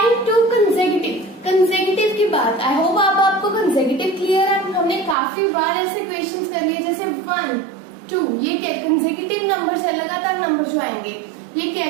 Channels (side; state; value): left; drops out; at 5.2 s